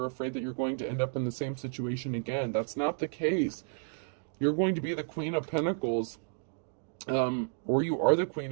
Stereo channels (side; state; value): left; silent; digital silence